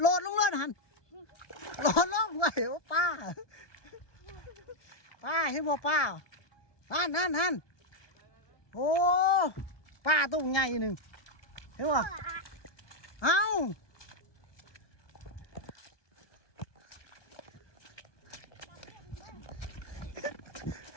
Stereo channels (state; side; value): late; right; 1.2 ms